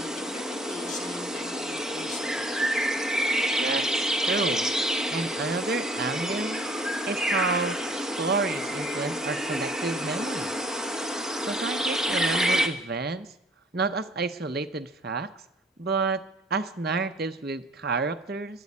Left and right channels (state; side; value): normal; both; correlation 0.55